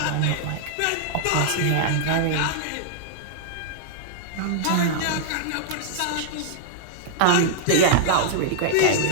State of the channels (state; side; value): different; both; correlation -0.01